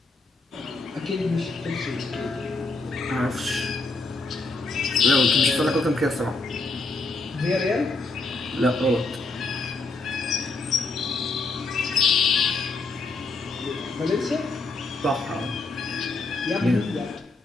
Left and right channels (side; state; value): right; quieter; 3.4 dB